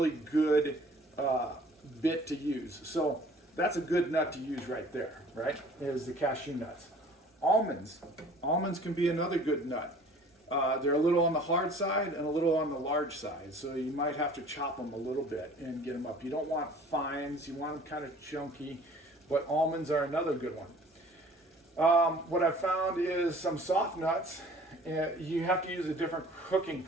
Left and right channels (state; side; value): normal; both; correlation 0.50